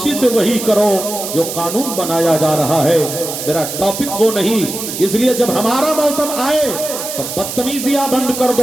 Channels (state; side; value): noise; right; hiss, 7 dB below the sound